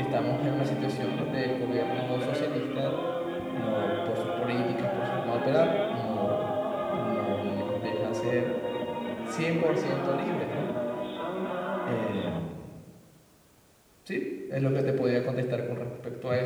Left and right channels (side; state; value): both; identical; correlation 1.00